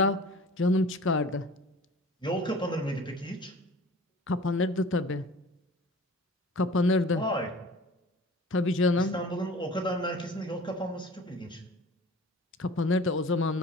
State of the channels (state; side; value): normal; both; correlation 0.43